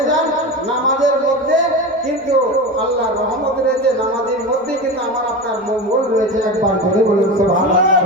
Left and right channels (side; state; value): both; normal; correlation 0.25